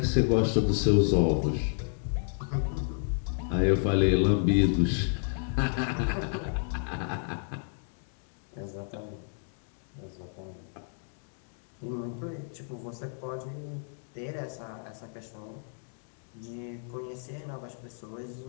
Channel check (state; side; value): silent; right; digital silence